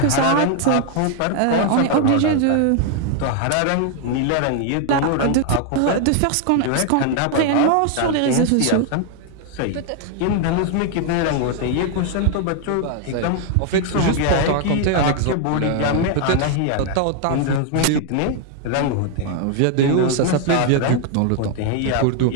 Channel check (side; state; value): both; different; correlation 0.00